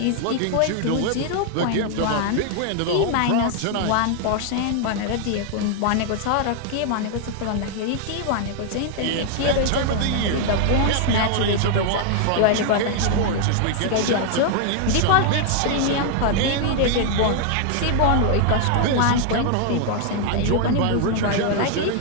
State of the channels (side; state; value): both; different; correlation 0.00